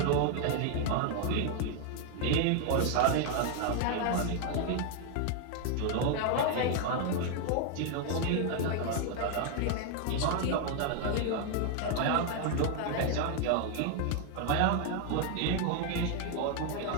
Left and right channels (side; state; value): both; different; correlation 0.00